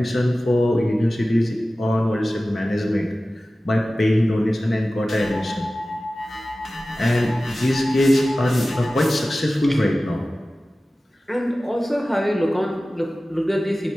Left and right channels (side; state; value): both; normal; correlation 0.96